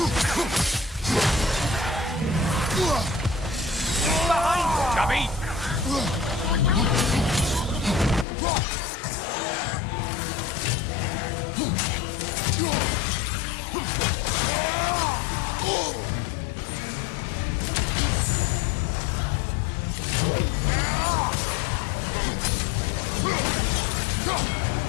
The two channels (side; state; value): right; drops out; at 8.2 s